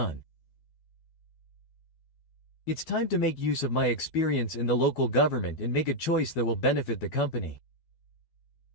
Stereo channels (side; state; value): right; late; 12 ms